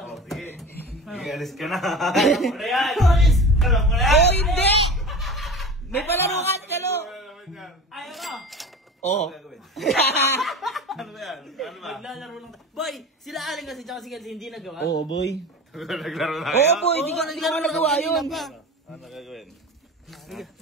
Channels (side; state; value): both; normal; correlation 0.34